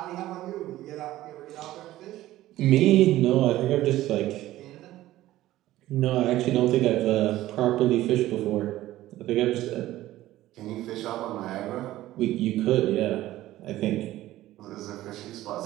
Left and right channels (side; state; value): left; quieter; 15.3 dB